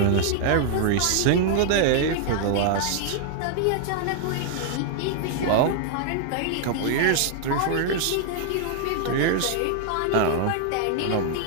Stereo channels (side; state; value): both; different; correlation 0.00